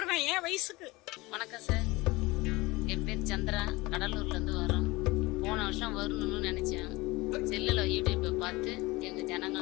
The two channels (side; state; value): right; quieter; 22.0 dB